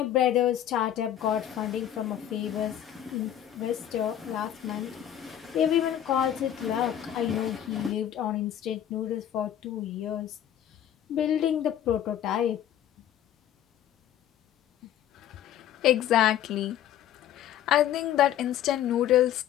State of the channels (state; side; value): quieter; right; 10.9 dB